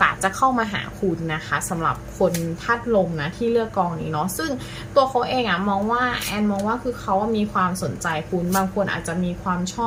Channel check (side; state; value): both; identical; correlation 1.00